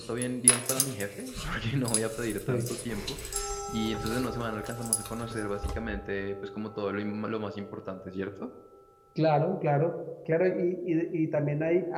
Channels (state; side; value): identical; both; correlation 1.00